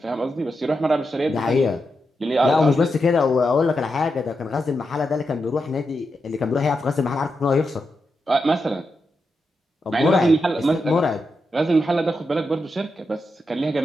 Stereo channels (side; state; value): both; normal; correlation 0.86